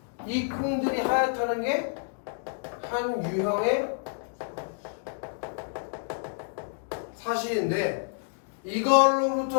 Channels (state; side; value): silent; right; digital silence